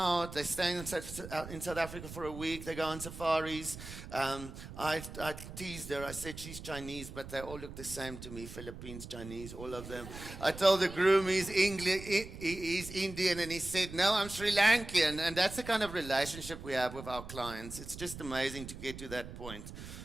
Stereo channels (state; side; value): noise; right; rumble, 12 dB below the sound